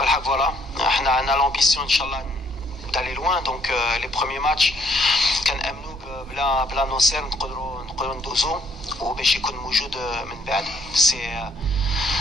فوالا احنا عندنا لامبيسيون ان شاء الله d'aller loin. دونك لي بروميي ماتش كنامنوا بلا ناصر نقدروا ندوزو وباش يكون موجود من بعد. سي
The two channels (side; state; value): both; normal; correlation 0.66